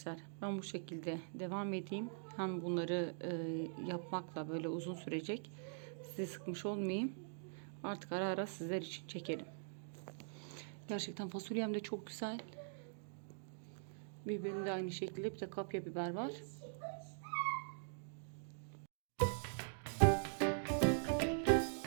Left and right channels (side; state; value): left; silent; digital silence